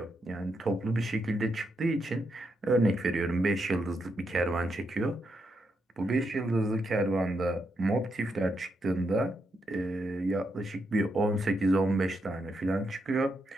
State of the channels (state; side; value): normal; both; correlation 0.81